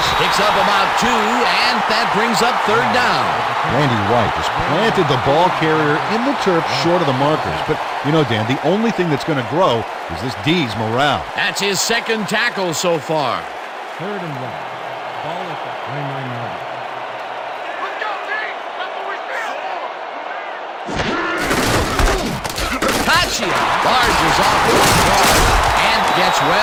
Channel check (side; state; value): both; identical; correlation 1.00